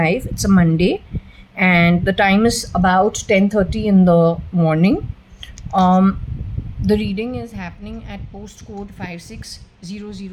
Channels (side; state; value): both; identical; correlation 1.00